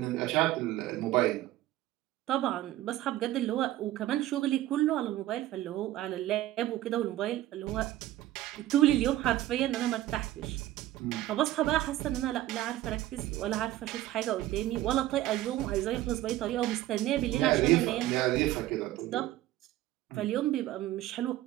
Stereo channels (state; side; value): quieter; left; 14.8 dB